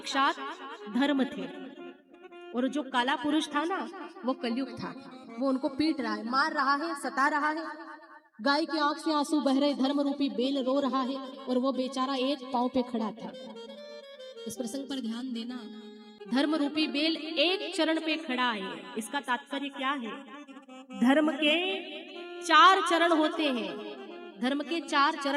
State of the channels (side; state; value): both; identical; correlation 1.00